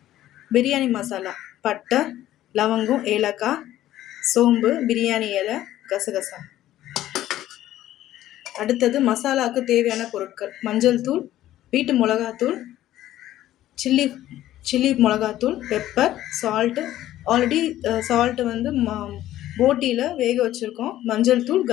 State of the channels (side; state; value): right; quieter; 13.6 dB